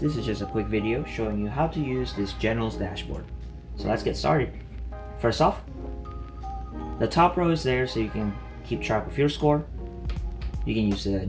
is just a quick video showing you how to use this General's dashboard. So let's get started. First off, the top row is there so you can keep track of your score. You can use a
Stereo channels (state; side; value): identical; both; correlation 1.00